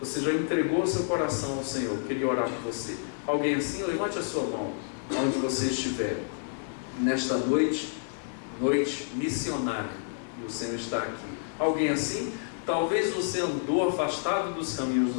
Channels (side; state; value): right; silent; digital silence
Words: já entregou o seu coração ao Senhor, queria orar por você. Alguém assim, levante a sua mão, onde você estiver. Nesta noite missionária, e o Senhor está aqui. Alguém assim? Talvez você andou afastado dos caminhos